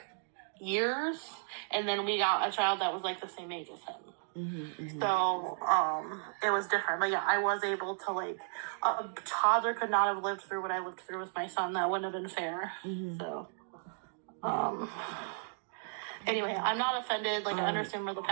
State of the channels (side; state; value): left; silent; digital silence